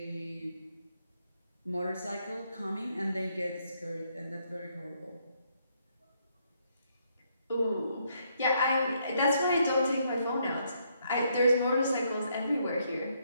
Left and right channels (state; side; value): inverted; both; correlation -0.73